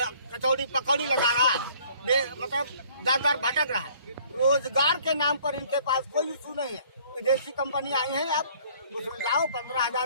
कचौड़ी पकौड़ी लगा रहा है, मतलब दर भटक रहा है। रोजगार के नाम पर इनके पास कोई इशू नहीं है। विदेशी कंपनी आई है, आप उसमें जाओ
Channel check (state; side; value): inverted; both; correlation -0.57